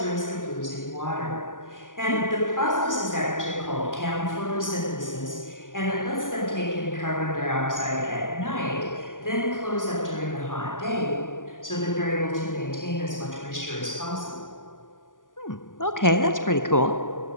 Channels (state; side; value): late; right; 0.88 ms